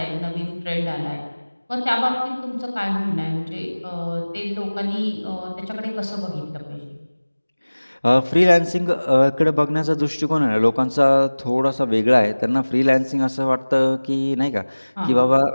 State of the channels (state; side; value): inverted; both; correlation -1.00